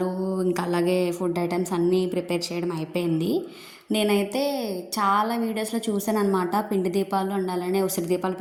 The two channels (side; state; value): both; identical; correlation 1.00